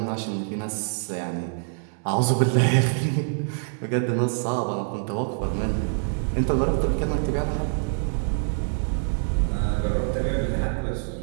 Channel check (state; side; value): silent; left; 62 dB below the other